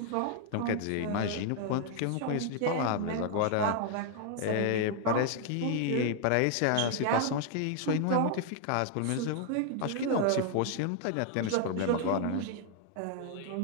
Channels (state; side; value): different; both; correlation 0.00